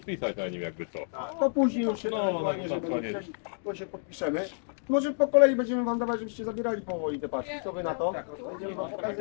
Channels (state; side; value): silent; right; digital silence